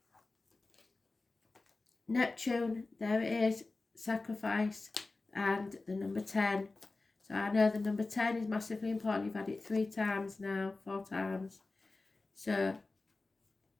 Neptune, there it is, sacrifice, and the number 10. So I know the number 10 is massively important. You've had it 3 times now, 4 times. So,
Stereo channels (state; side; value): quieter; right; 3.4 dB